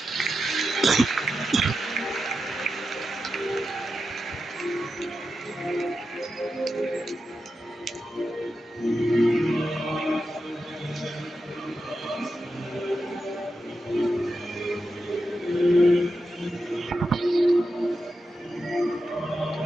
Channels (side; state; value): both; normal; correlation 0.89